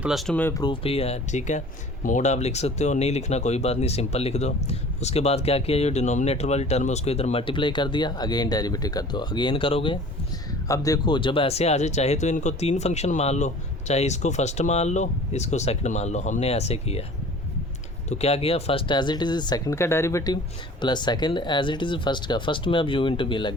में प्रूफ भी है, ठीक है। मोड आप लिख सकते हो, नहीं लिखना कोई बात नहीं, सिंपल लिख दो। उसके बाद क्या किया, ये डिनोमिनेटर वाली टर्म है उसको इधर मल्टीप्लाई कर दिया, अगेन डेरिवेटिव कर दो, अगेन करोगे। अब देखो, जब ऐसे आ जाए, चाहे तो इनको 3 फंक्शन मान लो, चाहे इसको फर्स्ट मान लो, इसको सेकंड मान लो। हमने ऐसे किया, तो क्या किया, first as it is second का derivative plus second as it is first का। फर्स्ट में अब u × v लग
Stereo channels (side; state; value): both; normal; correlation 0.45